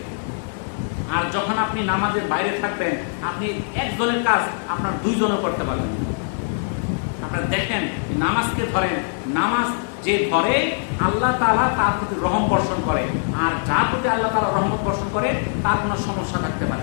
আর যখন আপনি নামাজের বাইরে থাকবেন, আপনি একজনের কাজ আপনার 2 জনও করতে পারবেন। আপনারা দেখেন, নামাজকে ধরেন, নামাজ যে ধরে আল্লাহ তাআলা তার প্রতি রহম বর্ষণ করে, আর যার প্রতি আল্লাহ তাআলা রহমত বর্ষণ করে তার কোনো সমস্যা থাকতে পারে।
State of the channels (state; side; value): silent; right; digital silence